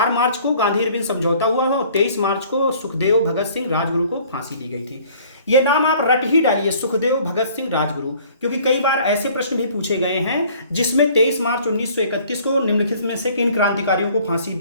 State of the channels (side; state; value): both; inverted; correlation -0.54